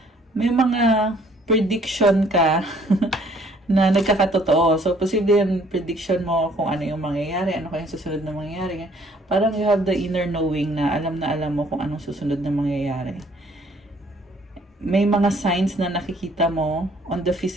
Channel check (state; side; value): normal; both; correlation 0.60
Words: May mga prediction ka na nagkakatotoo. So, posible yung prediction mo kung ano yung mangyayari, ano kayong susunod na mangyayari. Parang you have the inner knowing na alam mo kung anong susunod na mangyayari. May mga signs na nakikita mo on the